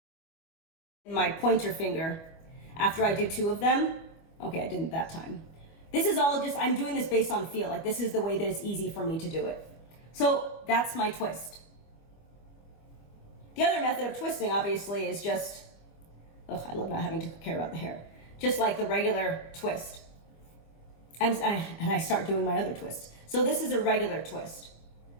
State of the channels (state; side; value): late; right; 25 ms